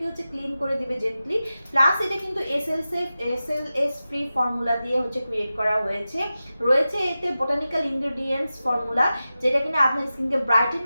হচ্ছে ক্লিন করে দিবে জেন্টলি। প্লাস এটা কিন্তু এসএলএস ফ্রি ফর্মুলা দিয়ে হচ্ছে ক্রিয়েট করা হয়েছে। রয়েছে এতে বোটানিক্যাল ইনগ্রেডিয়েন্টস ফর্মুলা, যেটা কিনা আপনার স্কিনকে ব্রাইটেন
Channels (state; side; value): inverted; both; correlation -0.94